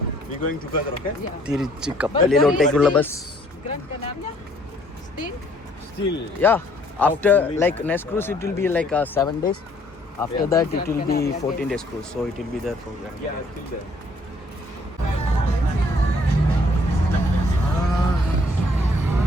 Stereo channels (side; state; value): both; normal; correlation 0.62